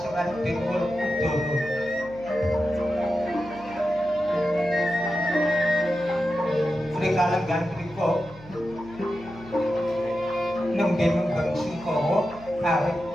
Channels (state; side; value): noise; right; hum, 20 dB below the sound